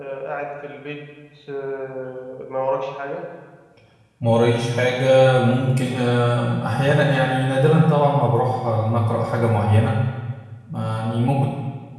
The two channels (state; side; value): identical; both; correlation 1.00